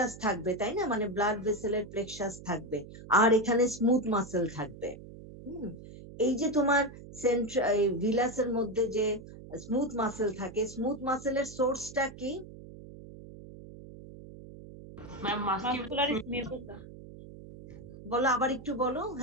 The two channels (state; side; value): noise; right; hum, 16 dB below the sound